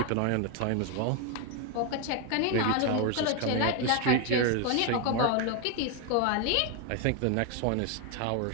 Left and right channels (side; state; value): both; different; correlation 0.01